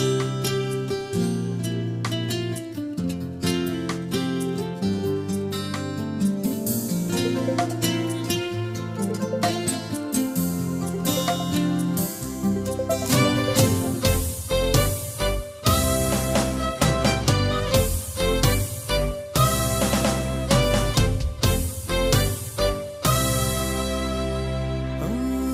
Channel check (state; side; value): identical; both; correlation 1.00